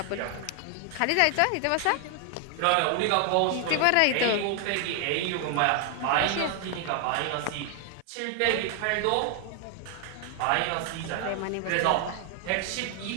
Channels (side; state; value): both; different; correlation 0.00